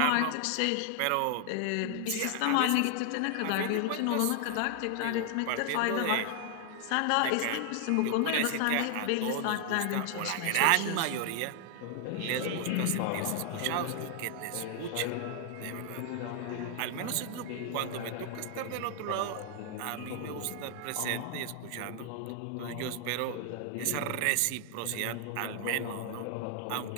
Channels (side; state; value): both; different; correlation 0.00